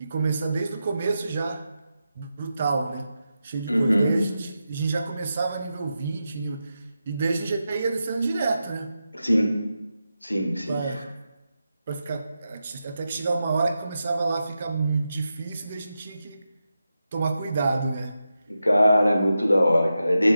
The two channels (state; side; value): inverted; both; correlation -0.89